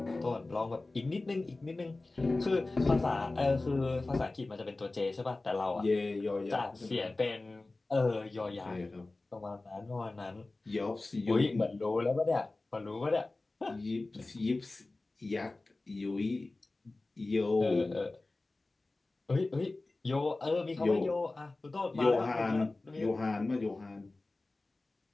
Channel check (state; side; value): quieter; right; 3.2 dB